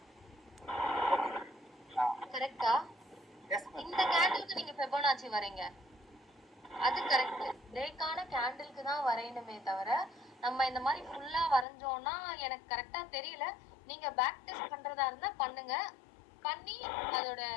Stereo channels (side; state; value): right; drops out; at 11.7 s